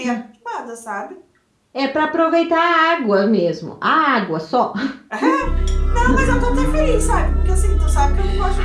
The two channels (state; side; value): identical; both; correlation 1.00